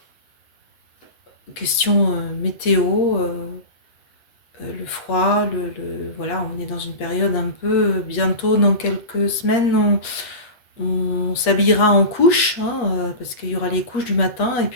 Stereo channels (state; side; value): late; right; 8.4 ms